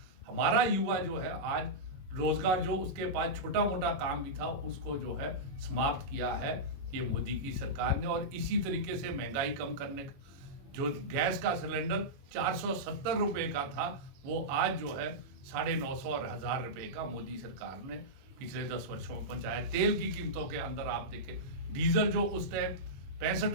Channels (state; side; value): late; left; 21 ms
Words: हमारा युवा जो है आज रोजगार जो उसके पास छोटा मोटा काम भी था उसको जो है समाप्त किया है ये मोदी की सरकार ने। और इसी तरीके से महंगाई कम करने का जो गैस का सिलेंडर 470 रुपए का था वो आज जो है 950 और 1000 रुपए का मोदी सरकार ने पिछले 10 वर्षों में पहुंचाया। तेल की कीमतों के अंदर आप देखें, डीजल जो उस टाइम 65